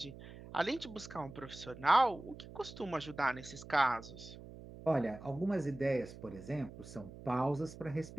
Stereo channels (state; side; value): noise; right; hum, 15 dB below the sound